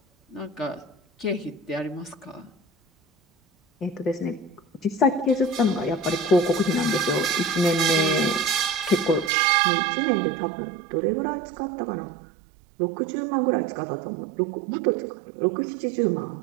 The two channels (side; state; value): left; drops out; at 9.3 s